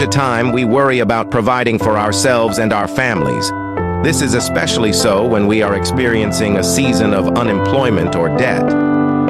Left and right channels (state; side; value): identical; both; correlation 1.00